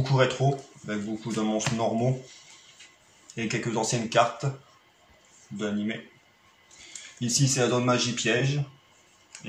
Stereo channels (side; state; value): both; identical; correlation 1.00